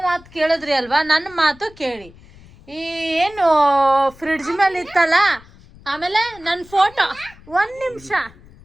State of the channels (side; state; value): left; noise; rumble, 24 dB below the sound